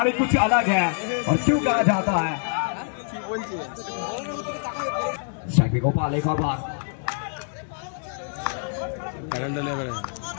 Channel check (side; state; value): right; silent; digital silence